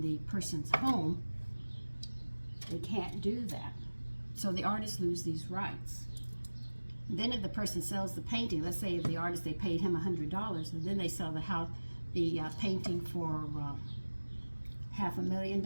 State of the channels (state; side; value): inverted; both; correlation -1.00